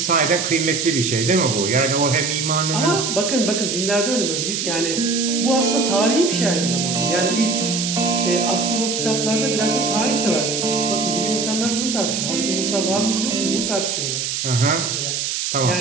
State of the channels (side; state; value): right; noise; hiss, 2 dB below the sound